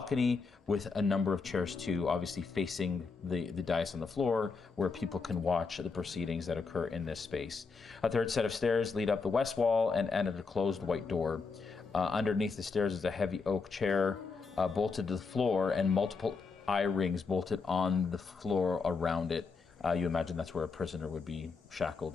with a number of chairs too, obviously facing the dais on the floor where people can watch the proceedings that occur in this space. A third set of stairs lead up the west wall and end at a closed white door. Underneath the stairs is a heavy oak chair bolted to the floor and multiple eye rings bolted on the floor around it. You imagine that's where a prisoner would be shackled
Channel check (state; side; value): quieter; right; 4.7 dB